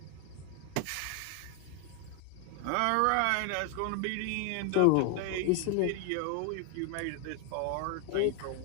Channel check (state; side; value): different; both; correlation 0.00